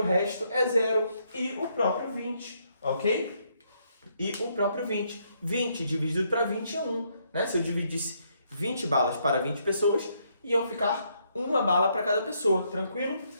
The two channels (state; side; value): inverted; both; correlation -0.73